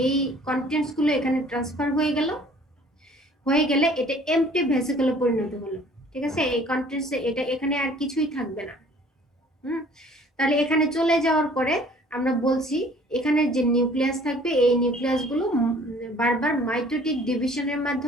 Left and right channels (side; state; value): both; normal; correlation 0.53